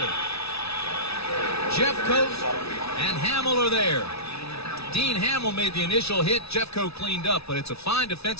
Jeffcoat and Hamill are there. Dean Hamill made the initial hit. Jeffcoat cleaned up, but it's a fine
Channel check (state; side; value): late; right; 0.79 ms